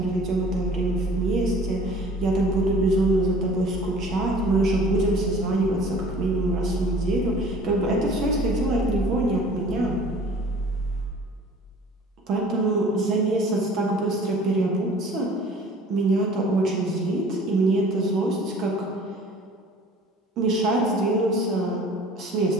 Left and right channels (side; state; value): both; normal; correlation 0.48